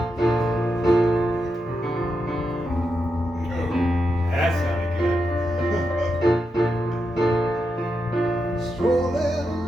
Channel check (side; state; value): both; normal; correlation 0.86